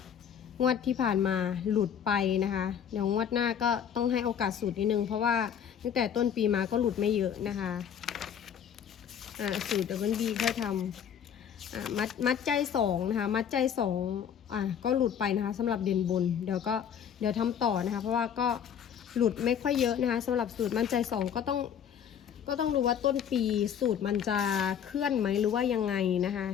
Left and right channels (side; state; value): right; quieter; 8.5 dB